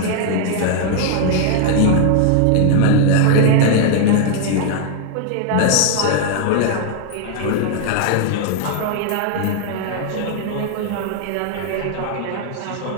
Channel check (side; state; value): both; different; correlation 0.00